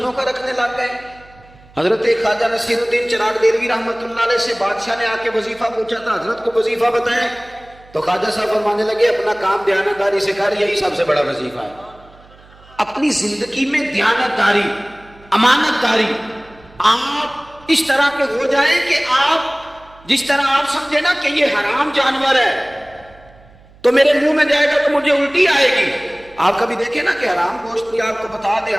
کا رکھنے لگ گئے۔ حضرت خواجہ نصیر الدین چراغ دہلوی رحمۃ اللہ علیہ سے بادشاہ نے آ کے وظیفہ پوچھا تھا، حضرت کو وظیفہ بتائیں، تو خواجہ صاحب فرمانے لگے اپنا کام دیانتداری سے کر، یہی سب سے بڑا وظیفہ ہے۔ اپنی زندگی میں دیانتداری، امانت داری، آپ اس طرح کے ہو جائیں کہ آپ جس طرح آپ سمجھے نا کہ یہ حرام جانور ہے تو میرے منہ میں جائے گا تو مجھے الٹی آئے گی۔ آپ کبھی دیکھیں نا کہ حرام گوشت بھی آپ کو بتا دے،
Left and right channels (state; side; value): noise; right; hum, 26 dB below the sound